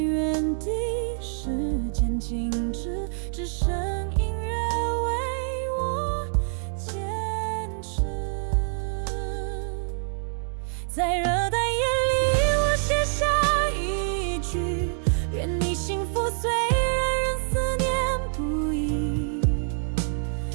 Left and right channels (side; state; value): left; silent; digital silence